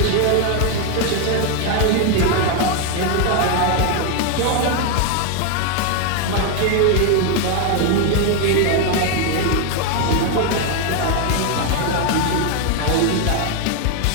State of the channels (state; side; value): different; both; correlation 0.01